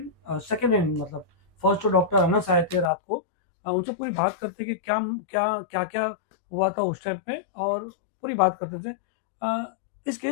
सेकेंड हैंड मतलब फर्स्ट तो डॉक्टर अनस आए थे रात को, उनसे पूरी बात करते कि क्या क्या क्या क्या हुआ था उस टाइम पे, और पूरी बात करते थे। इस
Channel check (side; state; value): right; drops out; at 2.9 s